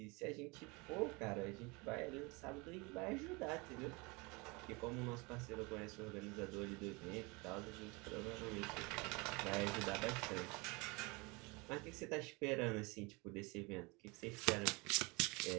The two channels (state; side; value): quieter; left; 26.9 dB